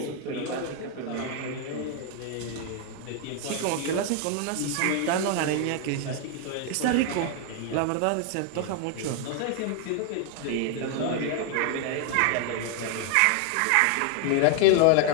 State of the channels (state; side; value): different; both; correlation 0.00